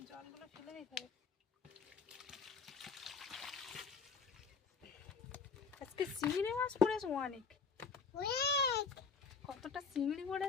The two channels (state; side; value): quieter; right; 5.3 dB